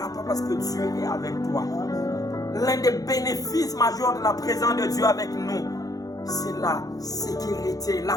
pas parce que Dieu est avec toi. L'un des bénéfices majeurs de la présence de Dieu avec nous, c'est la sécurité, la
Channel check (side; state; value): right; late; 0.18 ms